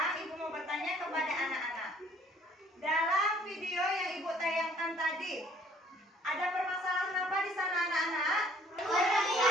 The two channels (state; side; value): normal; both; correlation 0.59